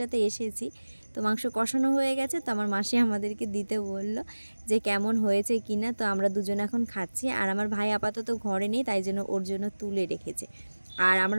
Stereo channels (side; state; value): both; inverted; correlation -1.00